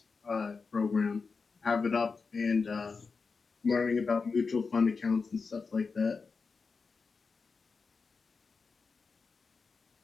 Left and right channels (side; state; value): right; quieter; 4.8 dB